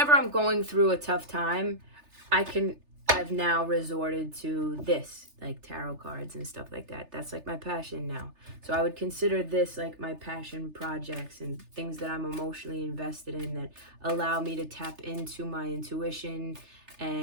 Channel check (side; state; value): left; late; 3.3 ms